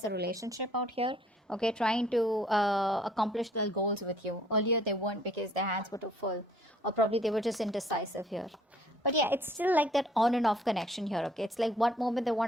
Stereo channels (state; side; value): normal; both; correlation 0.59